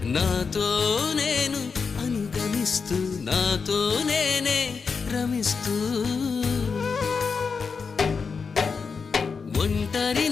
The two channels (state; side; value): quieter; right; 5.3 dB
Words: నాతో నేను అనుగమిస్తూ నాతో నేనే రమిస్తూ